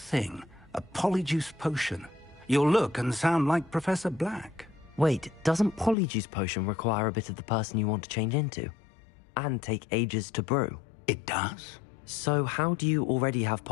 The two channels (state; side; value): drops out; right; at 6.0 s